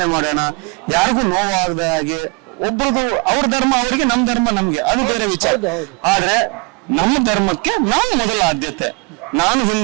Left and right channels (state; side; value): quieter; left; 30.9 dB